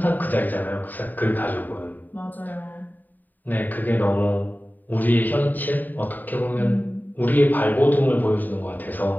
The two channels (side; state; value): right; late; 0.087 ms